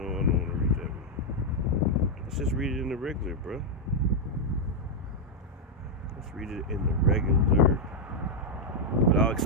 I don't want to read that one. Let's just read it in the regular, bro. Let's read it in the regular. But I'll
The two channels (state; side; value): normal; both; correlation -0.01